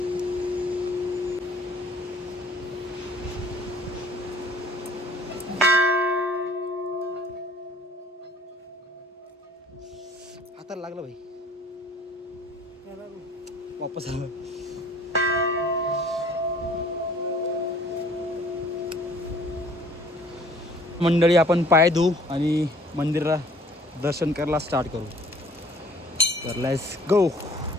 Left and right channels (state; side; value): normal; both; correlation 0.55